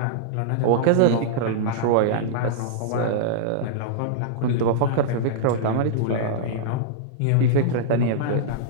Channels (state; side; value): different; both; correlation -0.02